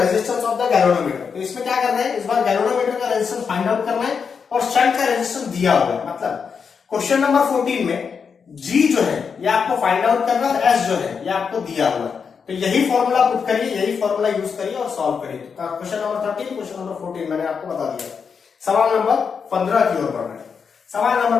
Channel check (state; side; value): quieter; right; 6.1 dB